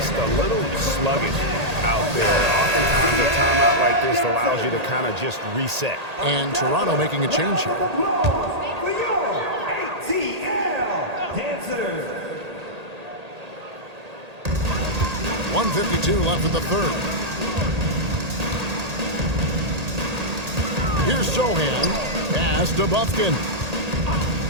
a little sluggish out there. Oftentimes a timeout like this allows you to kind of just reset. And Toronto making a change here. 1:52 left in the 3rd. Here's Sohan. Pass to Bufkin.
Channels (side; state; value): left; late; 1.8 ms